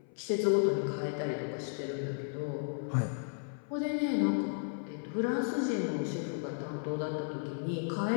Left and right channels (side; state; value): right; silent; 55 dB below the other